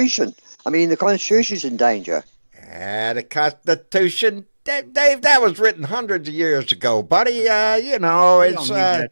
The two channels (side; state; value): both; inverted; correlation -1.00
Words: I mean, the Constitution's in danger. The Constitution, Dave, that was written hundreds of years ago, buddy. It's.